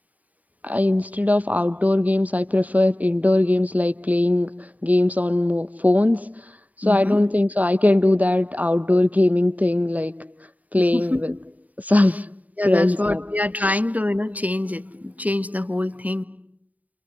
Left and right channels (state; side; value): late; left; 0.073 ms